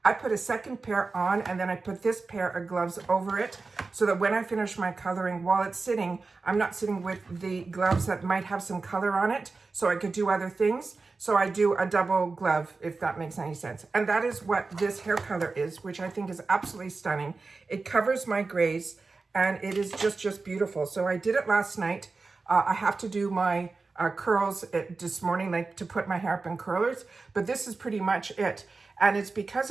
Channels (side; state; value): left; quieter; 4.0 dB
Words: I put a second pair on, and then I put this pair of gloves over it so that when I finish my coloring, while it's sitting, I'm not sitting with the gloves that might have some color on it, so I could do other things. So I do a double glove, if that makes any sense. And that is what this hair color is, which I think is absolutely stunning. It covers my grays, and it is just beautiful. So I did it last night. I have to do my curls this morning, like to put my hair up in curlers, but this is pretty much it. And it's